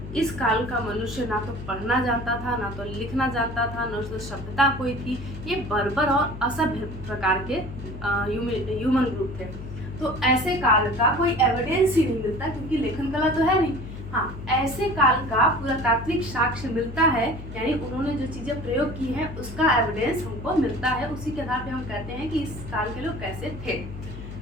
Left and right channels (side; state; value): left; noise; hum, 11 dB below the sound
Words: इस काल का मनुष्य ना तो पढ़ना जानता था, ना तो लिखना जानता था, न तो सभ्यता कोई थी। ये बर्बर और असभ्य प्रकार के ह्यूमन ग्रुप थे। तो ऐसे काल का कोई एविडेंस ही नहीं मिलता, क्योंकि लेखन कला तो है नहीं। हाँ, ऐसे काल का पुरातात्विक साक्ष्य मिलता है, यानी उन्होंने जो चीज़ें प्रयोग की हैं उसका एविडेंस हमको मिलता है। उसी के आधार पे हम कहते हैं कि इस काल के लोग कैसे थे।